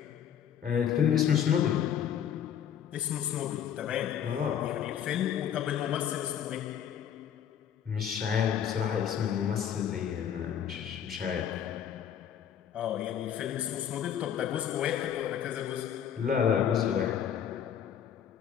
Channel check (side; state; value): right; quieter; 9.0 dB